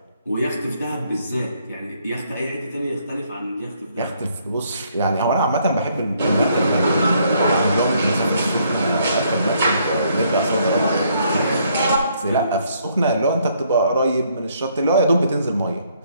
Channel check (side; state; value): both; inverted; correlation -0.69